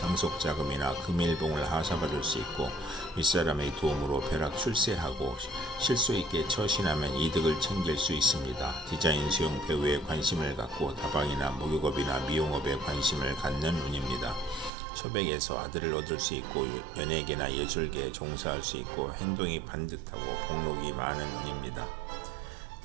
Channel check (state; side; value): drops out; left; at 14.7 s